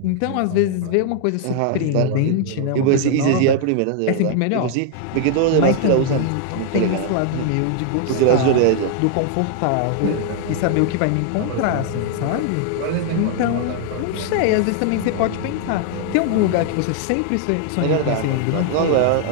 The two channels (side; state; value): both; different; correlation 0.00